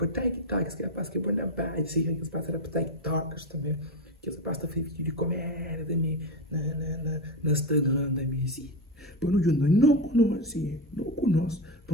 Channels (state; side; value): normal; both; correlation 0.15